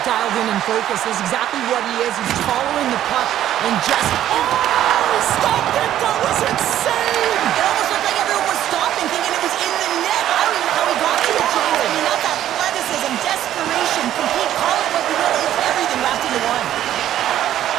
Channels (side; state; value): left; quieter; 11.9 dB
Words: dialed in and focused. That's exactly what he is. He's following the puck and just... Oh, stopped it. That was insane. It almost looked like everyone was stopping, thinking it was in the net. I don't even know how he got to it, James. I mean, that's athleticism, desperation, complete, call it what you will. It's everything wrapped into one.